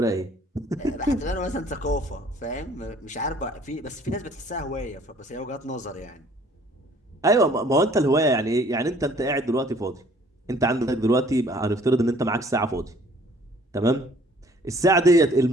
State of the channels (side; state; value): both; normal; correlation 0.56